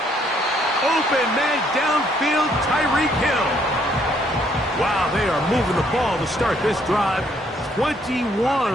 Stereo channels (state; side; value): normal; both; correlation 0.68